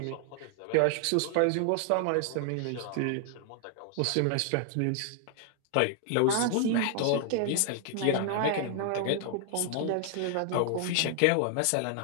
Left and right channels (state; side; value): different; both; correlation 0.00